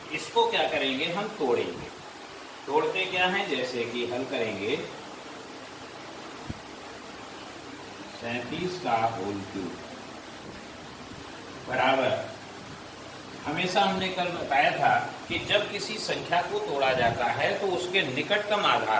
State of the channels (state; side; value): identical; both; correlation 1.00